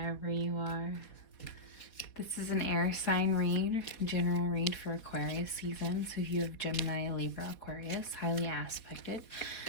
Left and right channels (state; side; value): late; right; 4.2 ms